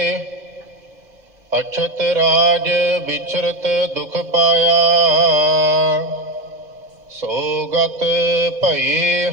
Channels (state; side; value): late; left; 1.7 ms